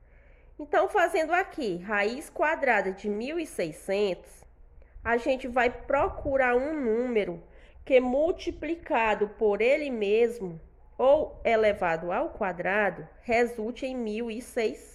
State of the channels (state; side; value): identical; both; correlation 1.00